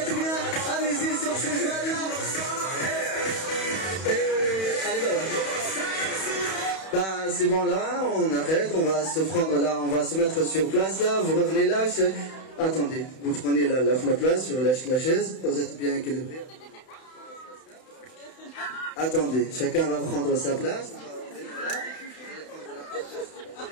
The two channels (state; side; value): late; right; 31 ms